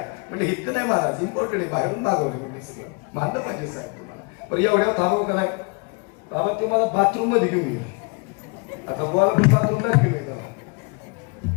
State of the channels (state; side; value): quieter; right; 32.5 dB